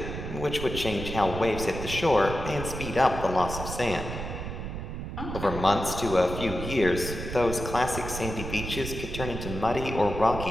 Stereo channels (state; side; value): noise; right; rumble, 7 dB below the sound